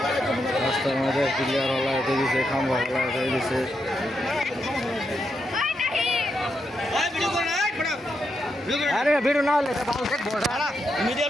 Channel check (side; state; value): both; normal; correlation 0.83